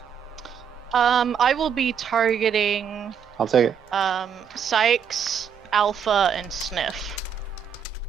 I will be targeting I'll take it. Sikes, Alpha, and Sniff.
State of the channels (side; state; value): left; quieter; 7.5 dB